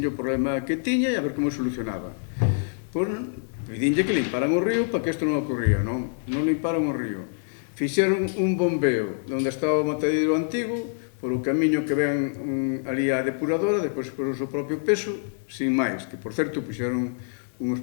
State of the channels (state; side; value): silent; right; digital silence